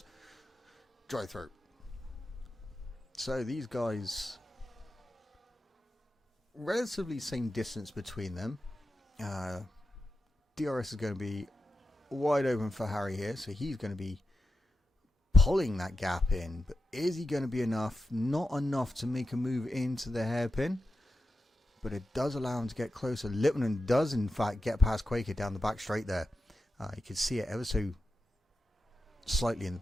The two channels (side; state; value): both; normal; correlation 0.90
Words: Dry throat. So these guys, relatively same distance between them. DRS is going to be wide open for Harry here, so he's going to be pulling that gap in, but is he going to be enough? Not enough to make a move into the hairpin, but it does allow him to get closer. Lippman does in fact get past Quaker down the back straight there. You can see it ever so slightly in the